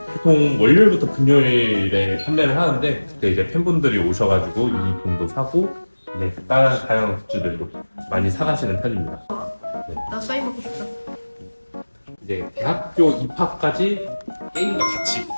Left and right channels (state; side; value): inverted; both; correlation -1.00